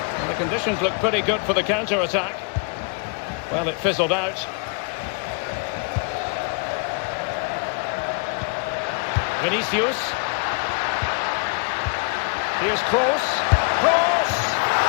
And the conditions look pretty good for the counter-attack. Well, it fizzled out. Vinicius. Here's Kroos. Kroos!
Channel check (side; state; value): right; quieter; 37.0 dB